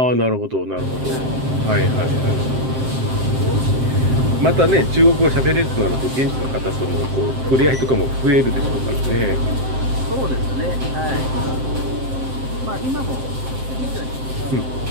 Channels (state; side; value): late; left; 7.6 ms